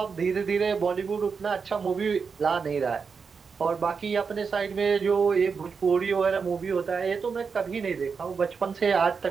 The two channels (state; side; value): quieter; left; 5.5 dB